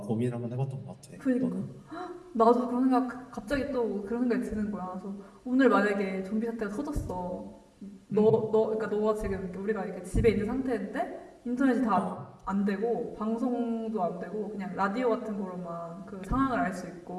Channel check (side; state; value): both; identical; correlation 1.00